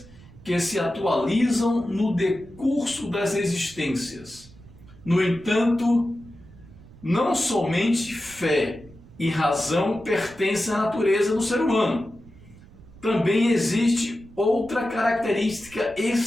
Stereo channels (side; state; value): right; noise; rumble, 22 dB below the sound